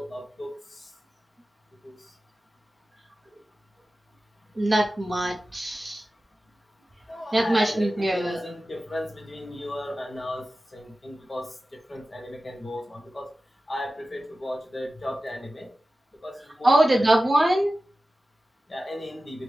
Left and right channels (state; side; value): normal; both; correlation 0.95